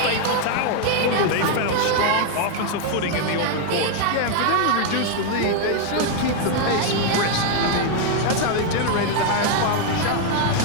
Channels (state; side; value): different; both; correlation 0.01